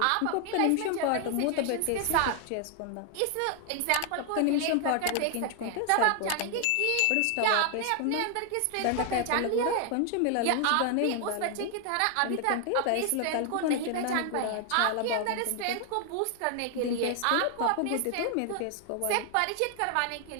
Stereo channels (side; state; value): both; different; correlation 0.00